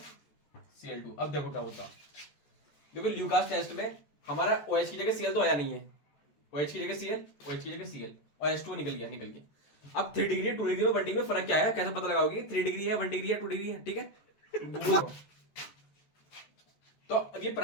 अब देखो क्या होता। देखो ल्यूकास टेस्ट में हमारा OH की जगह Cl तो आया नहीं है, OH की जगह Cl, OH की जगह Cl और H2O निकल गया। अब 3 डिग्री 2 डिग्री में 1 डिग्री में फर्क क्या है? कैसे पता लगाओगे? 3 डिग्री है, 1 डिग्री है, 2 डिग्री है, ठीक है। तो अब ये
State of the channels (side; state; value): right; late; 14 ms